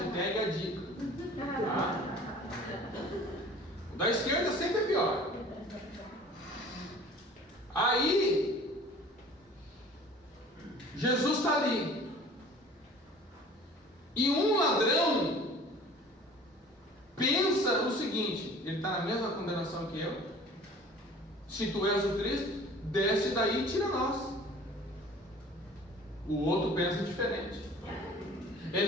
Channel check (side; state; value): both; normal; correlation 0.47